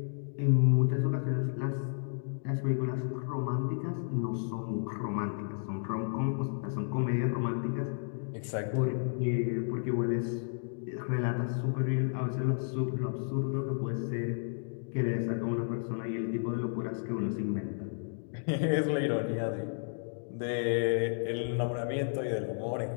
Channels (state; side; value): silent; right; digital silence